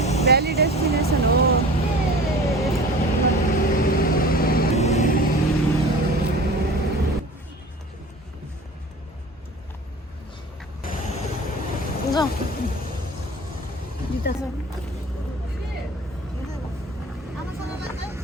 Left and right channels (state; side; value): normal; both; correlation 0.40